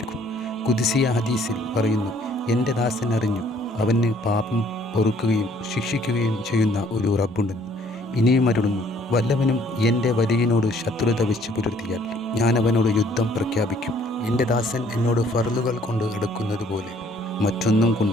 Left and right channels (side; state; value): both; normal; correlation 0.61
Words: ഖുദ്സിയ ഹദീസിൽ പറയുന്നു, എൻ്റെ ദാസൻ അറിഞ്ഞു അവന് പാപം പൊറുക്കുകയും ശിക്ഷിക്കുകയും ചെയ്യുന്ന ഒരു റബ്ബുണ്ടെന്ന്. ഇനിയും അരുളുന്നു, വല്ലവനും എൻ്റെ വലിയനോട് ശത്രുത വെച്ച് പുലർത്തിയാൽ ഞാൻ അവനോട് യുദ്ധം പ്രഖ്യാപിക്കും. എൻ്റെ ദാസൻ എന്നോട് ഫർളുകൾ കൊണ്ട് അടുക്കുന്നത് പോലെ മറ്റൊന്നും